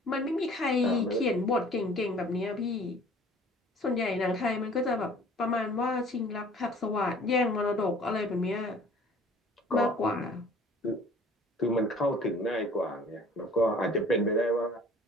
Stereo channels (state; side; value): normal; both; correlation 0.50